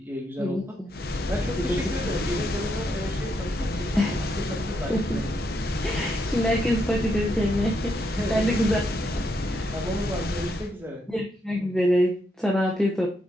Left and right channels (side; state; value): both; normal; correlation 0.79